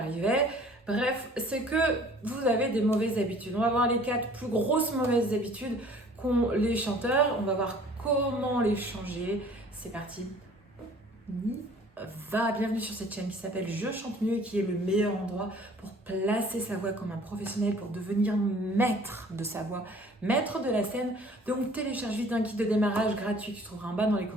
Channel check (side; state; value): both; normal; correlation 0.52